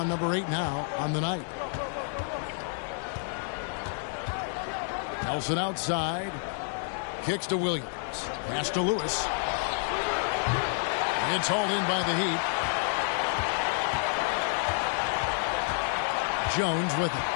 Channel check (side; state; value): right; silent; 57 dB below the other